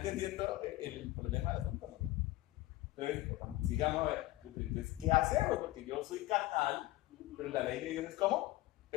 el problema del asunto? ¿No? Entonces, sigamos a ver. Entonces, ¿qué hacemos? Porque yo soy carnal, pero la ley de Dios es ¿cómo?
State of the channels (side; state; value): right; quieter; 18.1 dB